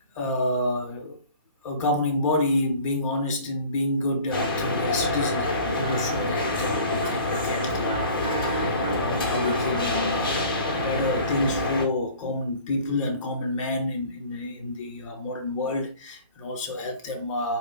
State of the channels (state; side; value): inverted; both; correlation -0.46